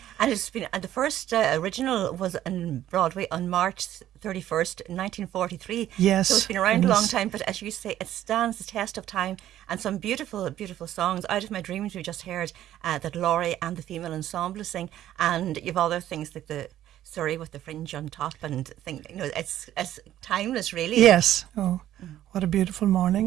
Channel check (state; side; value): quieter; left; 12.5 dB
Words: And it's been the first original was on Broadway on March 31st, 1943. Yes. So it's been around a long time, but as you say, it stands the test of time. And some beautiful, beautiful songs. Out of My Dreams, we just heard that Laurie and the female ensemble sing. And you've other things like the Surrey with the fringe on top and it's timeless, really. Yes. Oh, what a beautiful